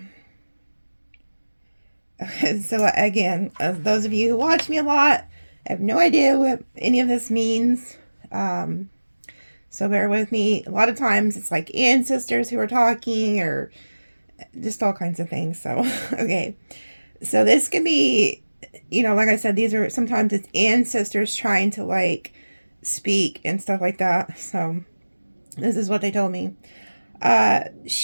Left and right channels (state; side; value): inverted; both; correlation -1.00